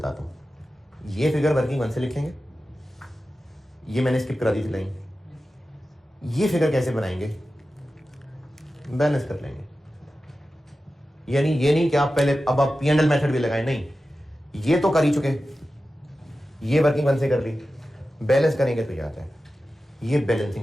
हूं। ये फिगर वर्किंग वन से लिखेंगे, ये मैंने स्किप करा दी थी लाइन। ये फिगर कैसे बनाएंगे? बैलेंस कर लेंगे। यानी ये नहीं कि आप पहले अब आप P&L मेथड भी लगाएं, नहीं, ये तो कर ही चुके, ये वर्किंग वन से कर ली, बैलेंस करेंगे तो ये आता है, ये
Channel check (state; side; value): normal; both; correlation 0.94